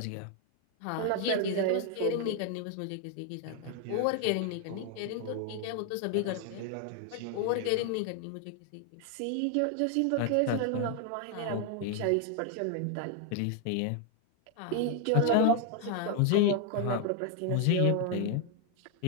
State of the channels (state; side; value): different; both; correlation 0.00